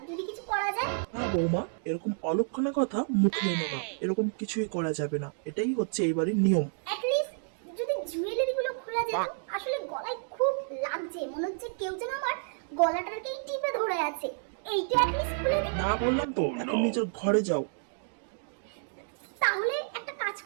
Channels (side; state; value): left; silent; digital silence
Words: যদি কিছু করা যায়। না বৌমা, এরকম অলক্ষণা কথা মুখে এনো না। এরকম কিছুই করা যাবে না, এটাই হচ্ছে এই বাড়ির নিয়ম। অ্যাটলিস্ট যদি জুয়েলারি গুলো খোলা যেত। আসলে গলায় খুব লাগছে, মনে হচ্ছে কেউ যেন আমার গলাটাকে টিপে ধরে আছে। এইটা অ্যাটলিস্ট খুলে দিন। না বললাম তো, এখন নিজের ঘরে যাও। তাহলে একটা কাজ